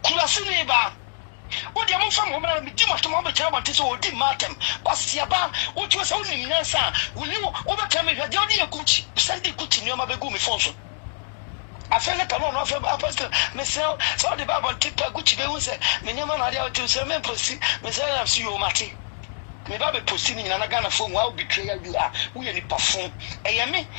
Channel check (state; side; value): silent; right; digital silence